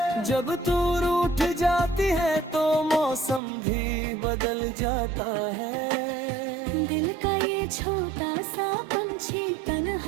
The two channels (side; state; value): left; drops out; at 3.4 s